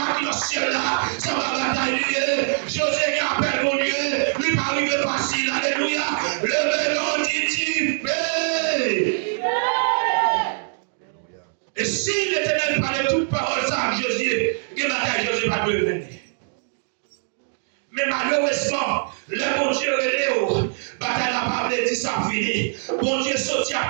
qui est au ciel là, ça va batailler. José qui appelle mon Dieu, lui pas arrivé facile. Alléluia. Le vélo dit et si l'Éternel parlait toute parole ça à Josué, que bataille Josué va devenir. Mais malheureusement, le bon Dieu est Léo. Bataille n'a pas dit ça fini. Bon Dieu sorti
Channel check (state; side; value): silent; left; digital silence